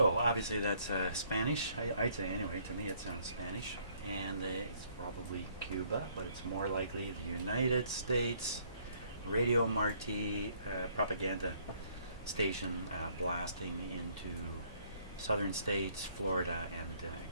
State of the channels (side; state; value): both; inverted; correlation -0.64